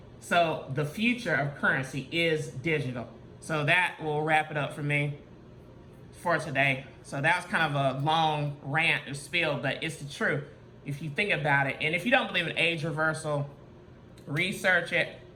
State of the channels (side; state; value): both; identical; correlation 1.00